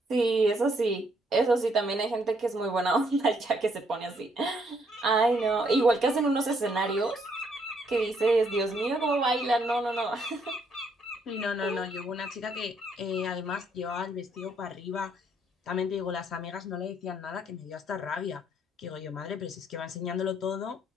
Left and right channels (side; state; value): both; normal; correlation 0.70